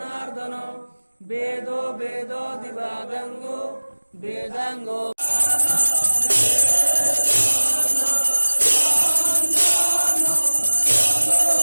वेदो वेदो दिवादंगो वेदांगो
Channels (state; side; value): inverted; both; correlation -1.00